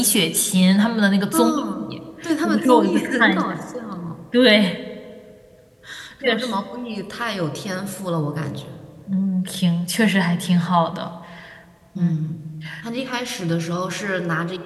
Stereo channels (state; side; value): identical; both; correlation 1.00